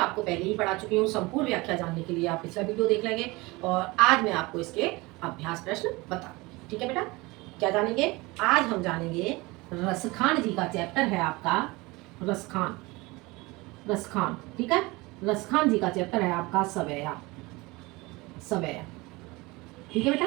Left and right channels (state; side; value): quieter; left; 23.1 dB